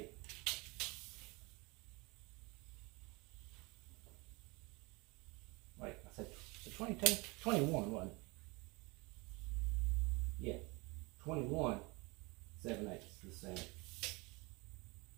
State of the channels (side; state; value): left; quieter; 26.4 dB